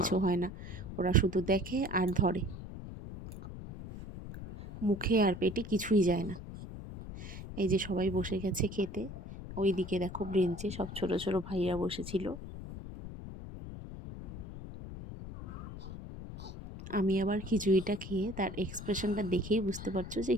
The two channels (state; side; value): noise; left; rumble, 10 dB below the sound